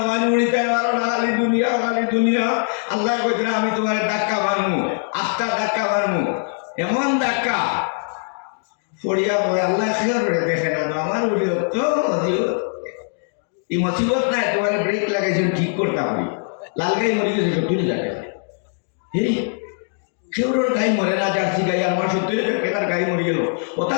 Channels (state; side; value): silent; right; 57 dB below the other